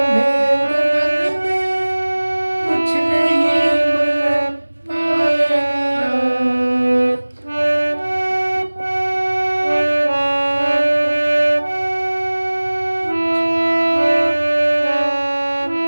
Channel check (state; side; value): inverted; both; correlation -1.00